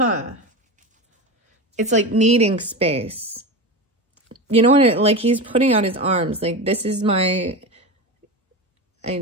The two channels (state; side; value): normal; both; correlation 0.23